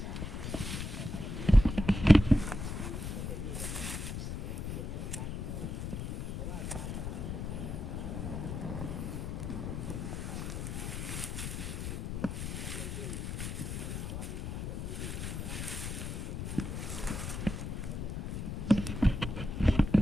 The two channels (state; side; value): noise; left; rumble, 4 dB below the sound